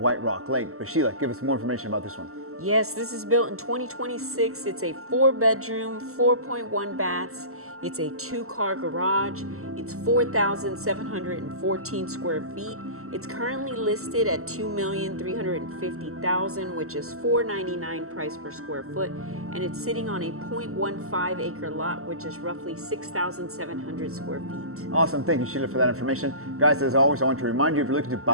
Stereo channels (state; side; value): late; left; 0.63 ms